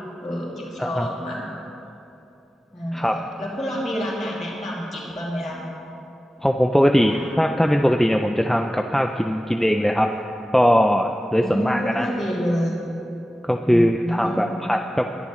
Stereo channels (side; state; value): both; normal; correlation 0.95